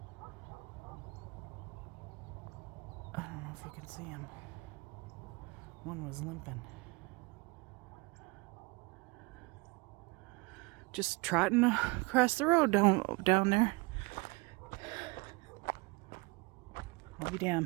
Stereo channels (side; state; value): left; quieter; 26.0 dB